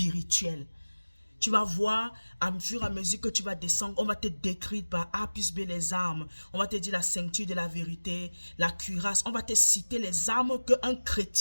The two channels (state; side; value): inverted; both; correlation -1.00